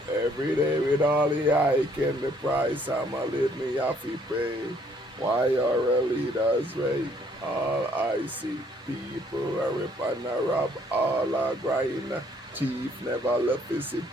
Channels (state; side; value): normal; both; correlation 0.64